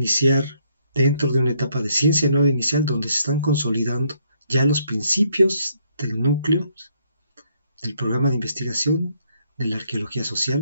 dentro de una etapa de ciencia nueva inicial donde se están consolidando ya los principios del núcleo del programa de investigación de la arqueología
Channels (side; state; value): both; inverted; correlation -0.71